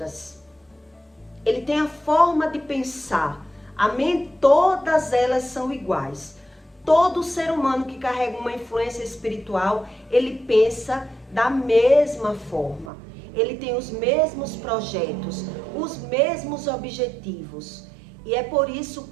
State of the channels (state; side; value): drops out; left; at 12.9 s